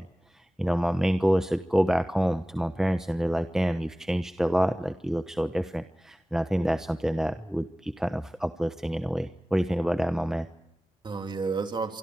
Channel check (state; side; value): normal; both; correlation 0.97